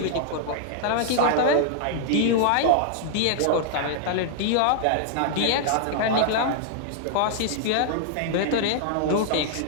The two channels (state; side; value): different; both; correlation -0.01